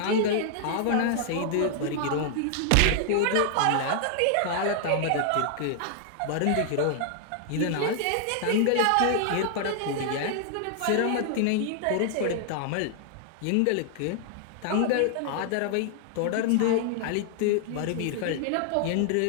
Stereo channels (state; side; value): different; both; correlation 0.00